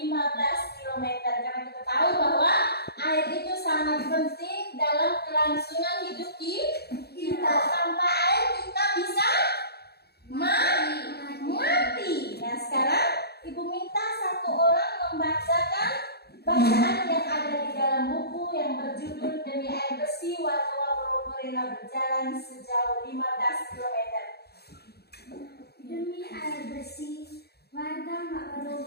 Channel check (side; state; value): right; late; 0.47 ms